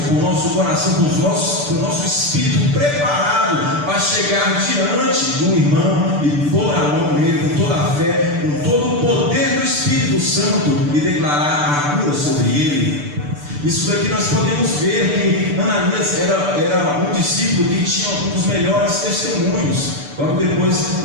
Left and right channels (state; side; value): late; left; 6.8 ms